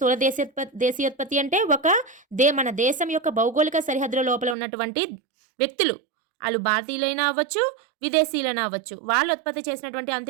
దేశీయోత్పత్తి అంటే మన దేశం యొక్క భౌగోళిక సరిహద్దుల లోపల ఉన్నటువంటి వ్యక్తులు, వాళ్ళు భారతీయులైనా అవ్వచ్చు, విదేశీయులైనా అవ్వచ్చు, వాళ్ళు ఉత్పత్తి చేసినటువంటి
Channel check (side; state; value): left; drops out; at 4.5 s